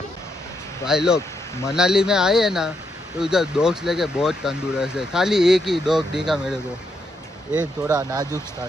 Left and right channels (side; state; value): both; normal; correlation 0.79